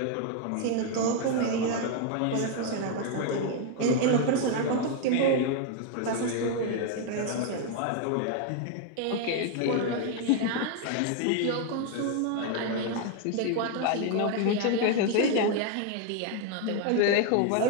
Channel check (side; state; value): both; different; correlation 0.00